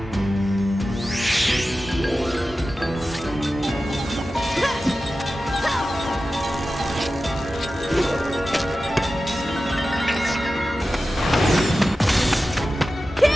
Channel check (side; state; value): both; normal; correlation 0.94